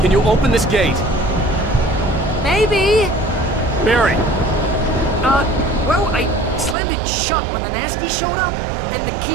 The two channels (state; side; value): drops out; left; at 6.8 s